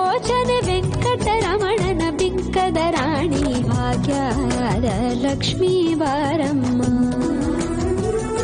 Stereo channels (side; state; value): both; identical; correlation 1.00